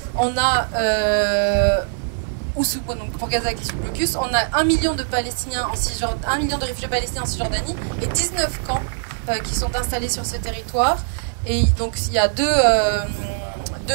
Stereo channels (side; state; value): left; silent; digital silence